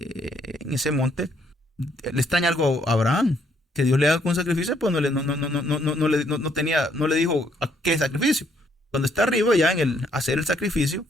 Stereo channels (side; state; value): both; normal; correlation 0.70